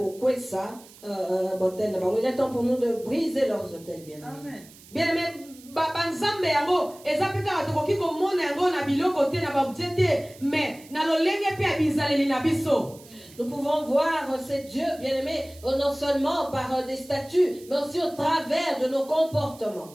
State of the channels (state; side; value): noise; right; hiss, 22 dB below the sound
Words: botel na bango. Il est temps pour nous de briser leurs hôtels, bien aimé. Bien aimé, banzambe yango ezapeka batokoki komona yango na biloko te na baobjet te mais na lolenge pe ya bizaleli na biso. Nous pouvons voir ces dieux, bien-aimés, non seulement par des statuts, mais aussi au travers de nos